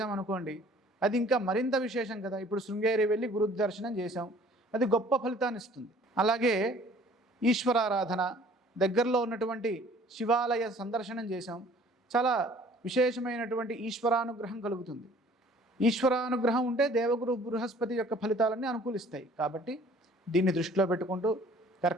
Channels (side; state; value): both; normal; correlation 0.53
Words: అది ఇంకా మరింత విశేషం కదా. ఇప్పుడు శృంగేరి వెళ్ళి గురు దర్శనం చేశాం, అది గొప్ప ఫలితాన్ని ఇస్తుంది. అలాగే ఈశ్వరారాధన, దగ్గరలో ఉన్నటువంటి శివాలయ సందర్శనం చేశాం, చాలా విశేషమైనటువంటి ఈశ్వరానుగ్రహం కలుగుతుంది. ఈశ్వరానుగ్రహం ఉంటే దేవగురు బృహస్పతి యొక్క ఫలితాలన్నీ అనుకూలిస్తాయి. కాబట్టి దీన్ని దృష్టిలో పెట్టుకుంటూ